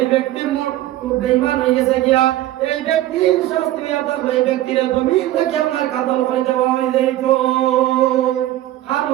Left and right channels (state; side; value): quieter; left; 14.7 dB